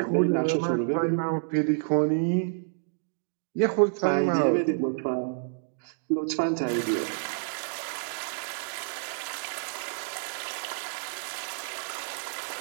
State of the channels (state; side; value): silent; left; digital silence